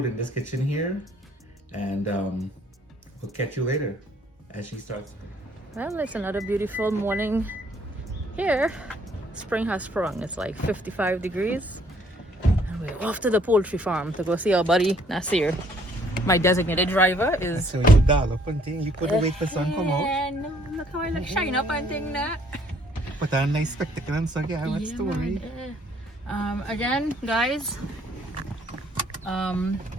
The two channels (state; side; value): normal; both; correlation 0.63